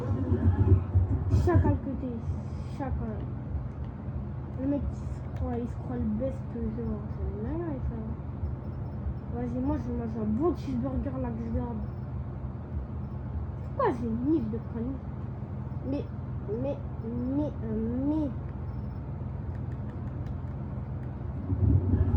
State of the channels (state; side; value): identical; both; correlation 1.00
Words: Chacal que t'es, chacal. Le mec il se croit le best genre. C'est dingue ça. Vas-y, moi je mange un bon cheeseburger là que je garde. Pourquoi j'ai une livre de conneries? Mais.